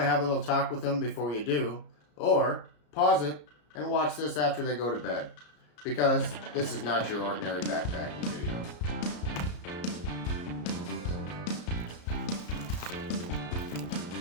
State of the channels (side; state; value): right; late; 34 ms